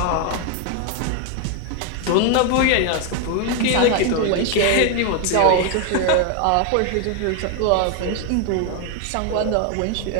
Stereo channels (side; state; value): both; different; correlation 0.01